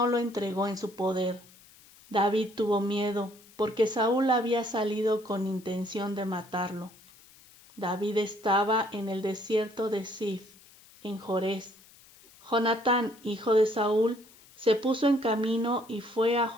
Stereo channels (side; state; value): left; noise; hiss, 25 dB below the sound